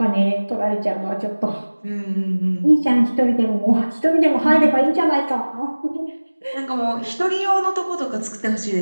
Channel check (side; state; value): both; inverted; correlation -1.00